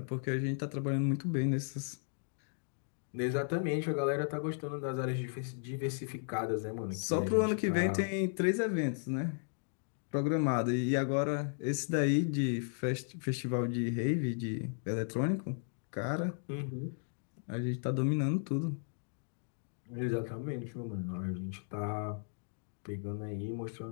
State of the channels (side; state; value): right; silent; digital silence